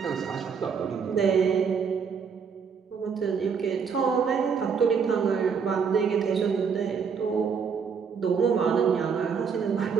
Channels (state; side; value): quieter; left; 6.2 dB